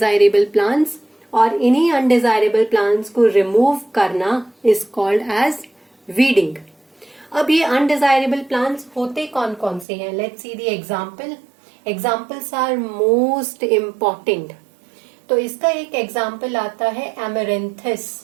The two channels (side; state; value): left; drops out; at 9.9 s